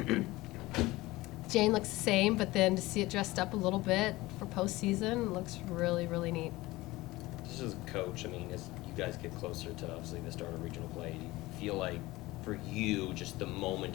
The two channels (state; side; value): quieter; right; 19.5 dB